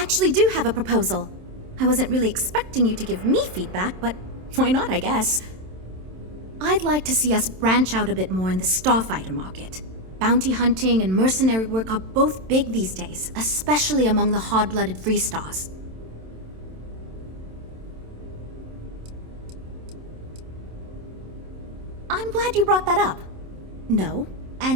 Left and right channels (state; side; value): late; left; 27 ms